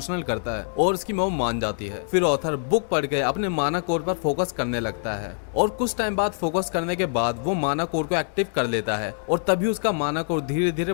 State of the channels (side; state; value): right; silent; digital silence